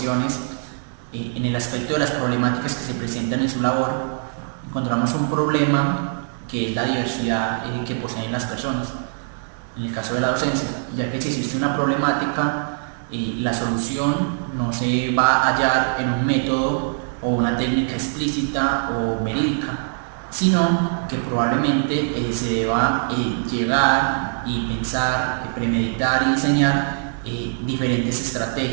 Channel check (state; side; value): silent; left; digital silence